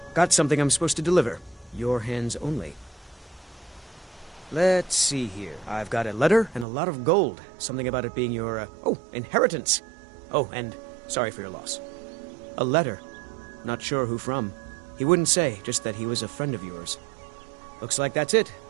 Got something I'm supposed to deliver. Your hands only. Let's see here. I've got a letter and a lot of gold. Something about it being your, inheritance. Oh, and sorry for your loss. A letter. Not sure who from. He wouldn't say, just that he was a friend of yours. Looks like that's it.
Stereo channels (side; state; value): left; drops out; at 6.7 s